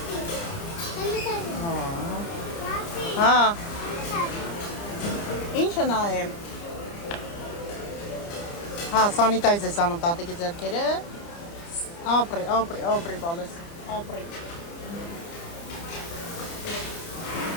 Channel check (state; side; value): late; right; 29 ms